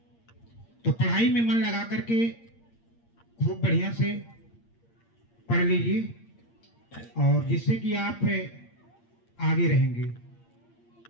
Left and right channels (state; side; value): late; right; 8.6 ms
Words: तो पढ़ाई में मन लगा करके खूब बढ़िया से पढ़ लीजिए और जिससे कि आप आगे रहेंगे।